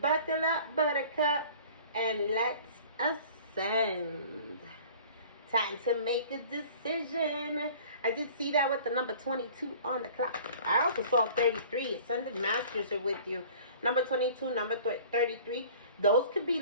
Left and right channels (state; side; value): inverted; both; correlation -0.47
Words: Buckle up, buttercup, and let's ascend. Time to make a decision. I did see that with the number 22 on the clock. I also saw 33. Ascended Masters are with you. Number 22, number 33. Those could be